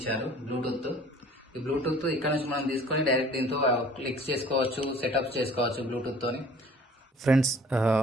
బ్లూటూత్. ఈ బ్లూటూత్ ఇక్కడ నుంచి మనం తీసుకొని డైరెక్ట్ దీంతో క్లిక్స్ చేసుకోవచ్చు, సెటప్స్ చేసుకోవచ్చు బ్లూటూత్తోని. ఫ్రెండ్స్,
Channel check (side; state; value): both; normal; correlation 0.51